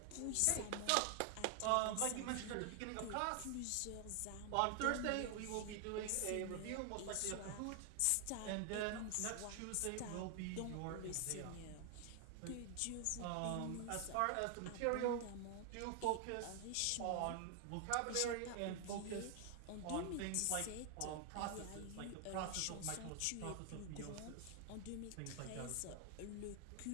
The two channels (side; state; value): both; different; correlation 0.00